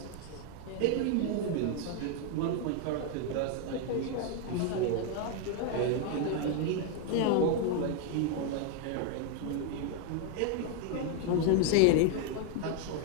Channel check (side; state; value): both; different; correlation 0.01